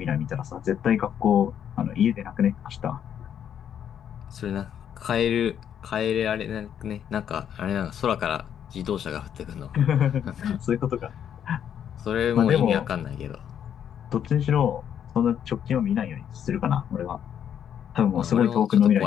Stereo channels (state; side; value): quieter; right; 9.1 dB